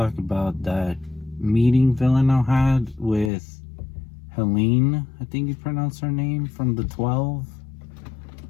about that meeting Villanelle had with Helene, I think you pronounce her name, from the 12.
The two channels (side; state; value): right; drops out; at 3.3 s